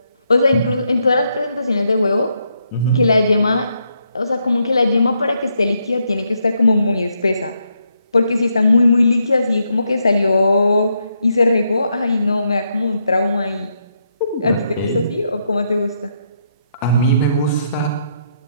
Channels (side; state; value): both; inverted; correlation -0.78